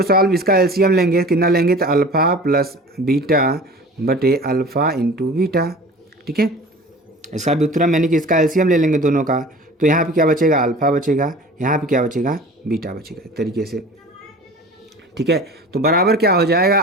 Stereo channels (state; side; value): normal; both; correlation 0.41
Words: सॉल्व, इसका एलसीएम लेंगे, कितना लेंगे, तो अल्फ़ा प्लस बीटा बटे अल्फ़ा इंटू बीटा। ठीक है, इसका व्युत्क्रम यानी कि इसका एलसीएम ले लेंगे दोनों का। तो यहाँ पे क्या बचेगा, अल्फ़ा बचेगा, यहाँ पे क्या बचेगा, बीटा बचेगा, एक तरीके से। ठीक है, तो बराबर क्या हो जाएगा,